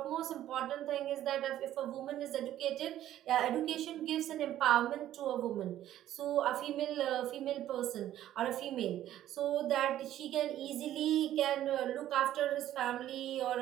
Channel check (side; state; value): left; quieter; 12.6 dB